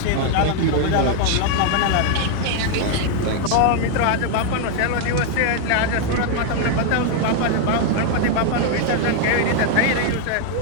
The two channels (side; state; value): both; different; correlation 0.00